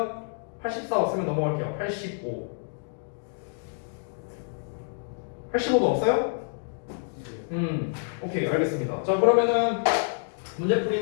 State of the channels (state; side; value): silent; right; digital silence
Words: 84 없으면 넘어갈게요. 85 85도 없어요? 오케이, 알겠습니다. 자, 그러면은